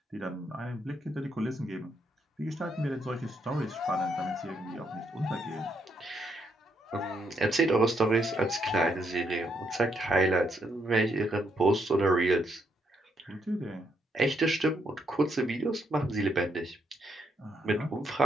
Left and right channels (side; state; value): both; normal; correlation 0.76